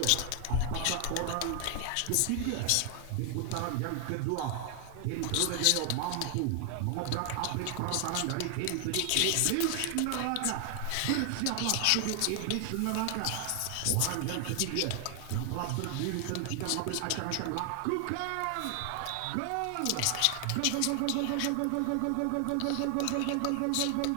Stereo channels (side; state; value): both; different; correlation 0.00